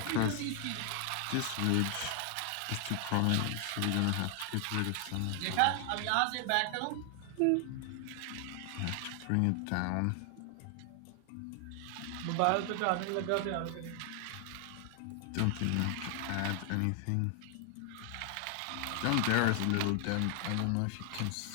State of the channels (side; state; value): both; different; correlation 0.00